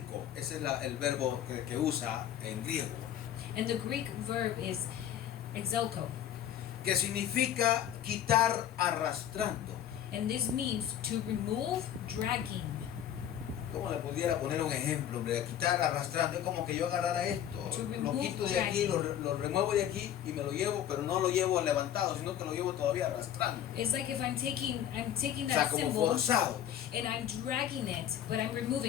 Ese es el verbo que usa en griego, And the Greek verb is exelko. que significa quitar arrastrando. And this means to remove, dragging. ¿Cómo le pudiera poner un ejemplo? Hombre? Quitar arrastrando es como que yo agarrara esto, To lo remove, quito de aquí, dragging. lo remuevo de aquí y me lo llevo, pero no lo llevo levantado, sino que lo llevo todavía arrastrando. It's like if I'm taking O sea, that como symbol forzado. and I'm dragging it, but I'm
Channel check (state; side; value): quieter; right; 10.6 dB